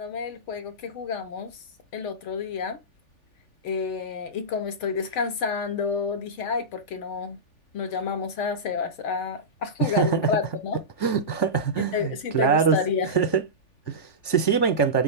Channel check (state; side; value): late; right; 3.4 ms